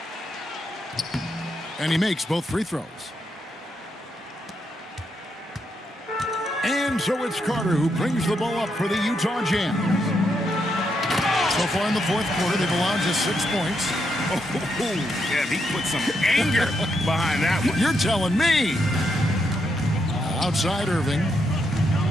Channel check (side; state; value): both; normal; correlation 0.80